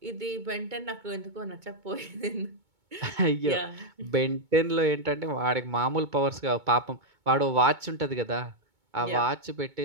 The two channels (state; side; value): late; left; 2.2 ms